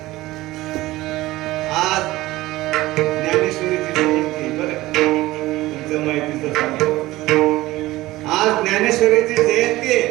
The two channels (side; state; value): left; quieter; 17.9 dB